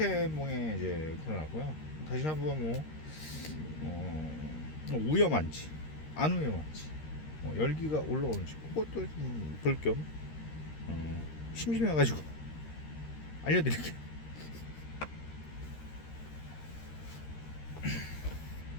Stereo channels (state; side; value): late; right; 13 ms